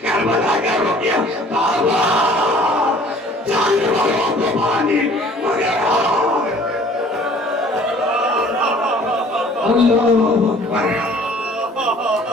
کربلا کا رکیا بابا جانوروں کو پانی مگر اللہ اکبر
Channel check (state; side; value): normal; both; correlation 0.52